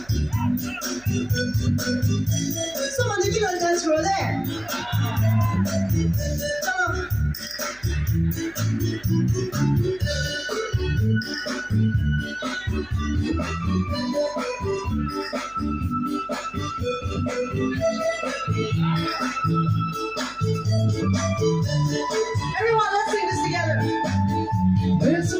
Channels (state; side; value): noise; right; hum, 25 dB below the sound